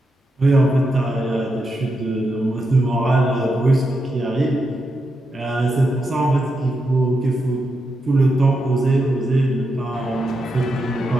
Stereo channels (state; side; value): normal; both; correlation 0.85